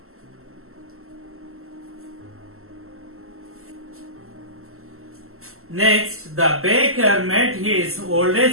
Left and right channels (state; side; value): late; left; 0.62 ms